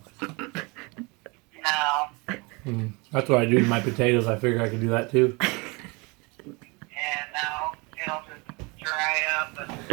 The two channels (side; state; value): left; quieter; 27.9 dB